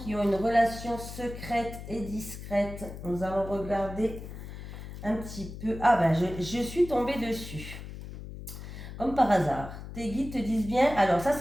ont une relation secrète et discrète. Nous allons regarder un petit peu. Ah ben, je suis tombée dessus. Comme par hasard. Tes guides te disent bien. Alors, ça,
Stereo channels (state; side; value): noise; left; hum, 11 dB below the sound